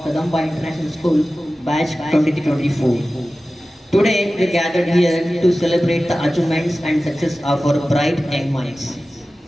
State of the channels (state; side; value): normal; both; correlation 0.96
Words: Kadamba International School, batch 2024. Today we gathered here to celebrate the achievements and success of our bright young minds,